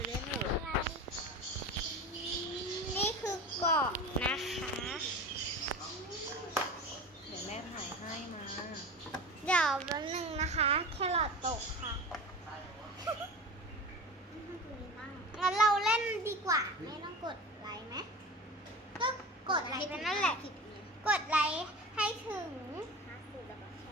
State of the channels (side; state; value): both; normal; correlation 0.32